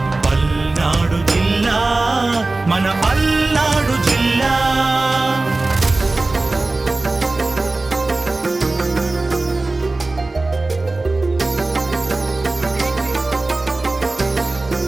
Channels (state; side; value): quieter; left; 3.2 dB